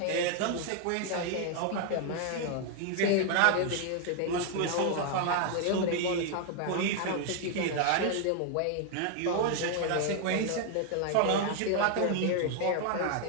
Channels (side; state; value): both; different; correlation 0.00